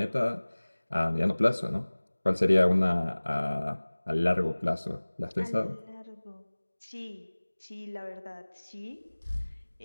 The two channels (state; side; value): inverted; both; correlation -1.00